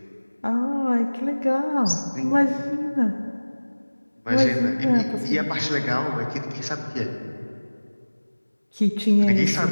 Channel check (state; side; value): inverted; both; correlation -1.00